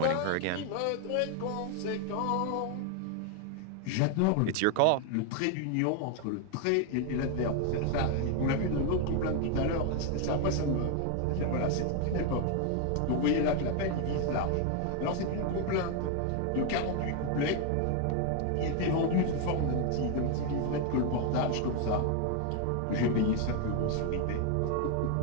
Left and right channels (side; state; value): both; different; correlation 0.01